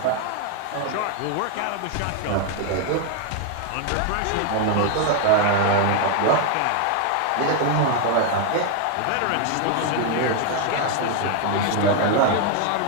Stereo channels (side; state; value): both; different; correlation 0.01